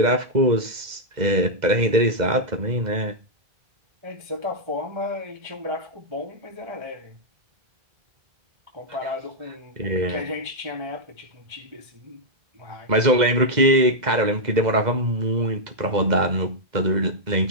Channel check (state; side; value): late; left; 2.0 ms